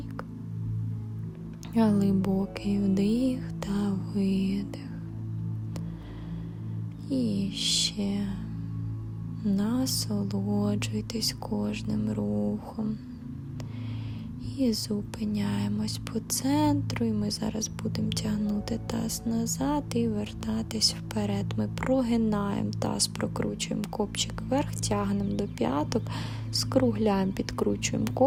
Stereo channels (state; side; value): identical; both; correlation 1.00